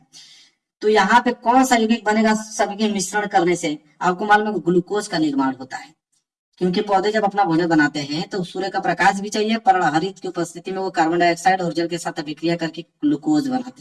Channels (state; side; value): identical; both; correlation 1.00